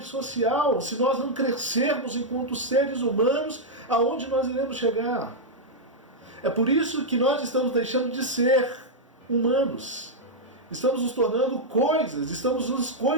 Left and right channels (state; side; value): normal; both; correlation -0.04